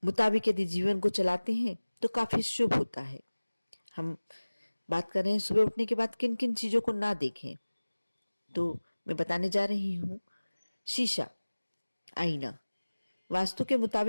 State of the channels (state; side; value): inverted; both; correlation -1.00